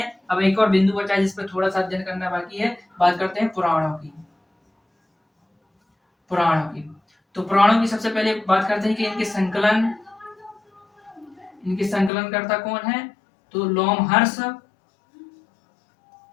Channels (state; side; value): drops out; right; at 12.1 s